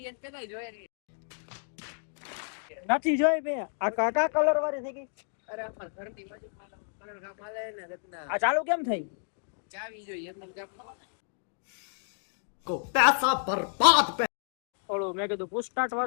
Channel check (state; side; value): silent; right; digital silence